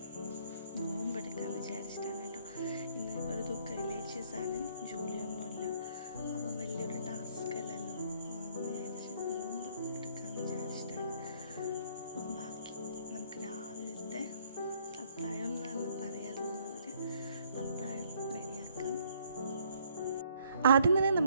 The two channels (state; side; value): inverted; both; correlation -0.66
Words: നോമ്പെടുക്കാമെന്ന് വിചാരിച്ചിട്ടാണ് കേട്ടോ. ഇന്ന് ഒരു റിലേറ്റീവ്സാണ്, ജോലിയൊന്നുമില്ല. അപ്പം വലിയൊരു ടാസ്ക് അല്ലല്ലോ വിചാരിച്ച് നോമ്പ് എടുക്കാമെന്ന് വിചാരിച്ചിട്ടാണ്. അപ്പം ബാക്കി നമുക്ക് രാവിലത്തെ അത്താഴം എന്ന് പറയാൻ തോന്നുന്നവർ അത്താഴം റെഡിയാക്കാം. ആദ്യം തന്നെ